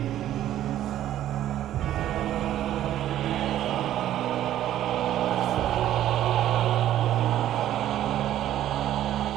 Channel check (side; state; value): left; quieter; 12.3 dB